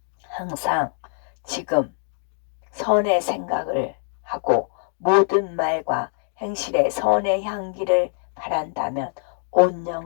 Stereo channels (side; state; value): right; silent; digital silence